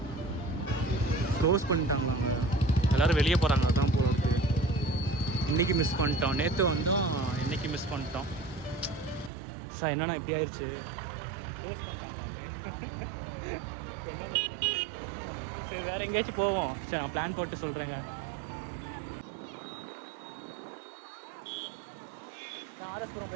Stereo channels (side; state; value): left; drops out; at 9.3 s